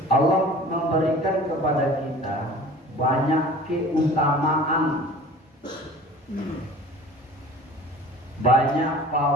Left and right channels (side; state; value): both; normal; correlation 0.43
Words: Allah memberikan kepada kita banyak keutamaan, banyak